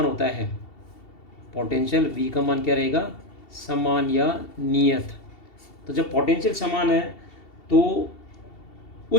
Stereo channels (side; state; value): right; late; 2.7 ms